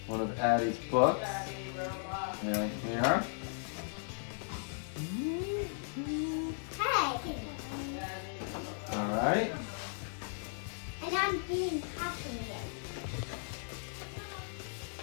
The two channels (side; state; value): right; silent; 54 dB below the other